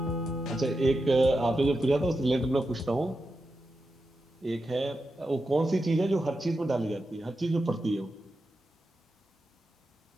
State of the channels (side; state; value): both; normal; correlation 0.89